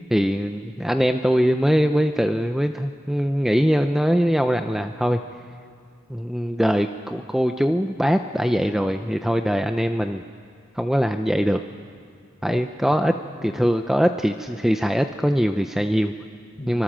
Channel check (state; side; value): normal; both; correlation 0.96